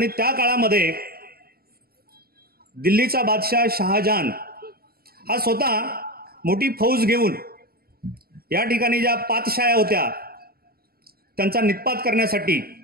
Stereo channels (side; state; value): left; late; 0.44 ms